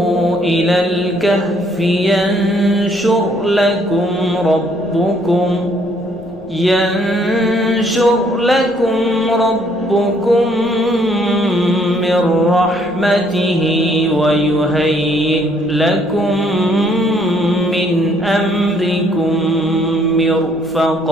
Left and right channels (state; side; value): noise; left; rumble, 26 dB below the sound